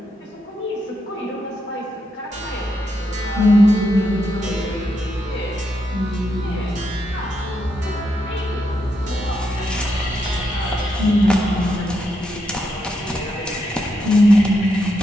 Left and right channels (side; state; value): both; normal; correlation 0.81